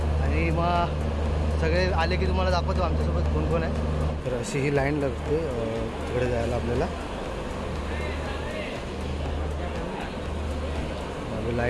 आणि मग सगळे आले की तुम्हाला दाखवतो आमच्यासोबत कोण कोण आहे. तर अशी ही लाईन लागते तिकडे जायला आपल्याला.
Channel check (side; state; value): both; identical; correlation 1.00